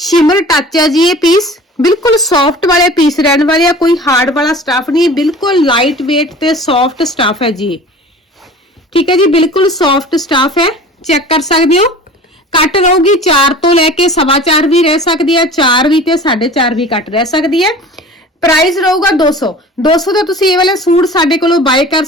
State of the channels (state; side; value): normal; both; correlation 0.42